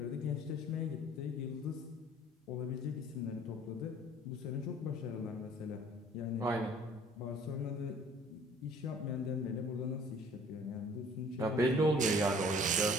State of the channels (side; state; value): both; normal; correlation 0.53